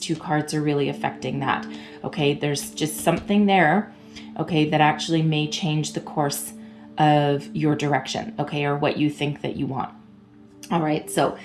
cards are really affecting that. Okay, there's just something there, okay, that actually may change the course of your direction, okay, or what you think that you want. All right, so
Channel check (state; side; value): identical; both; correlation 1.00